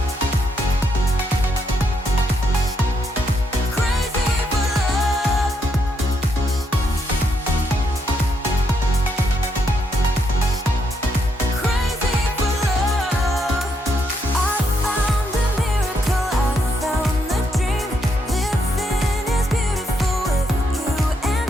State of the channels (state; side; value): normal; both; correlation 0.77